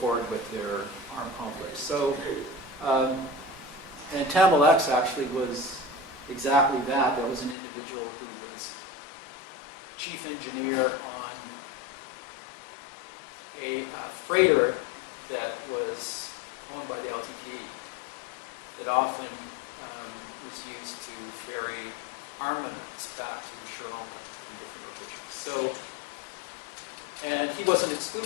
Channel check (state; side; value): drops out; right; at 7.6 s